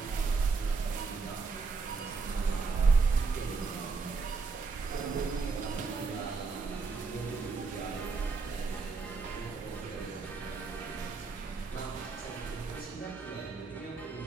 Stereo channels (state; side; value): quieter; left; 4.5 dB